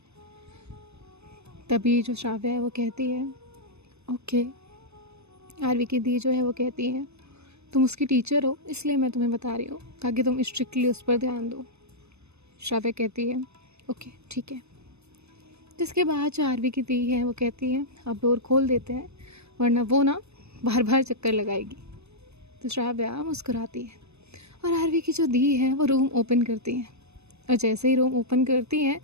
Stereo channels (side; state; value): left; late; 0.80 ms